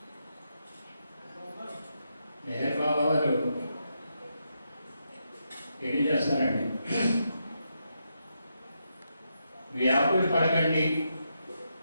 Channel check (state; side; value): inverted; both; correlation -0.83